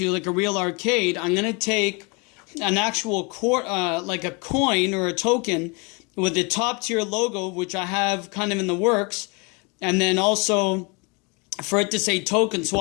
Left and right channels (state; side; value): quieter; right; 30.2 dB